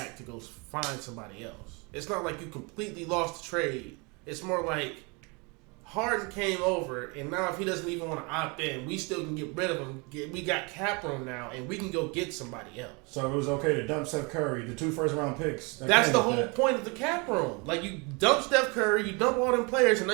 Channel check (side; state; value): left; quieter; 30.0 dB